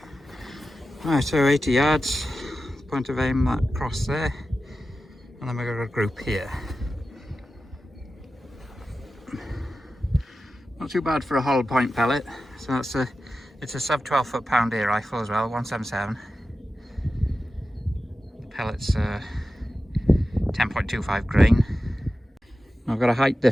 Right, so 80 yards, point of aim that cross there, and then we've got a group here. Not too bad for a hollow point pellet. So that's it's a sub 12 foot-pound ear rifle as well, 177. The pellet's 10.25 grain. I've got a height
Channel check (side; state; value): both; normal; correlation 0.93